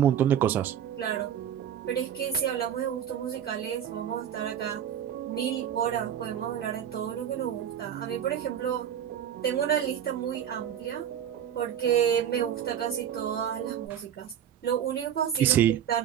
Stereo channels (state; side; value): quieter; left; 9.6 dB